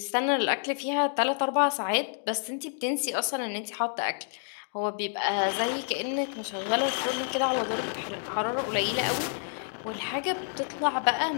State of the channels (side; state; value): right; silent; digital silence